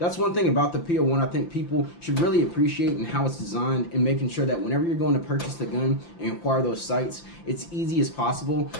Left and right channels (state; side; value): late; right; 5.8 ms